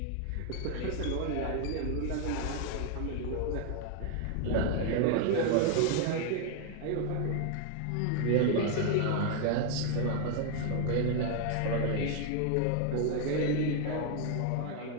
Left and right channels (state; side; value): different; both; correlation 0.00